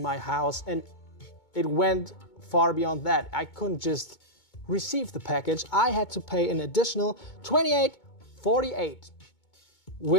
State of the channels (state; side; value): late; right; 2.2 ms